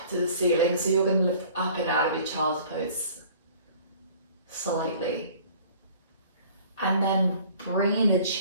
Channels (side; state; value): both; inverted; correlation -0.51